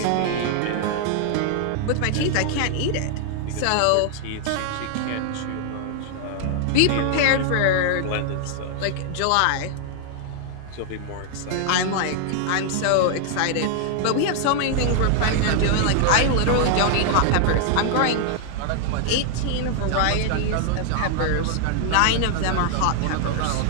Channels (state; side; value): different; both; correlation 0.00